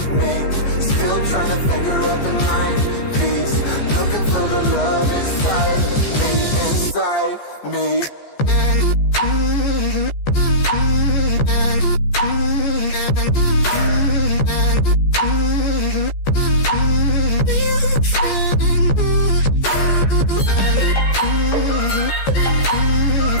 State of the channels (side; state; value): right; late; 14 ms